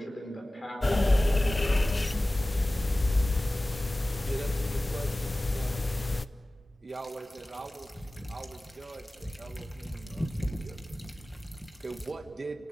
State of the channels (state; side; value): normal; both; correlation 0.97